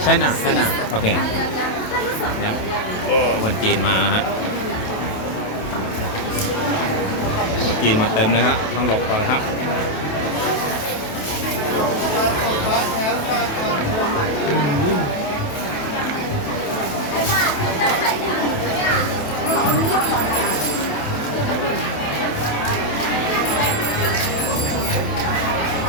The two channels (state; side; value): late; right; 27 ms